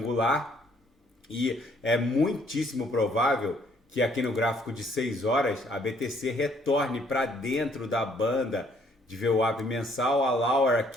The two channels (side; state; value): both; normal; correlation 0.64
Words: e é muitíssimo provável que aqui no gráfico de 6 horas a BTC retorne para dentro da banda de VWAP mensal. A Lauer